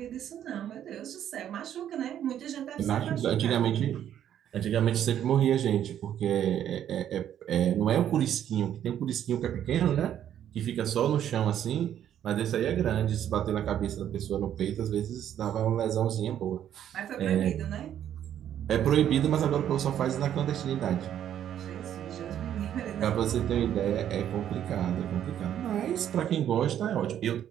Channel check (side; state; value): left; quieter; 10.3 dB